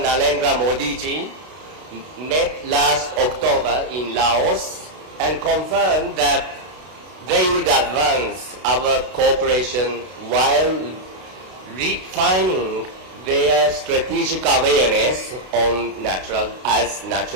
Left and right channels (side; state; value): left; late; 32 ms